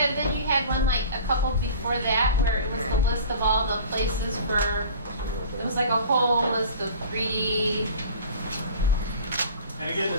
then you had one a couple before that where it was the list of all the places for, it was like a whole list of 3D. And again,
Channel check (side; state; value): both; inverted; correlation -0.42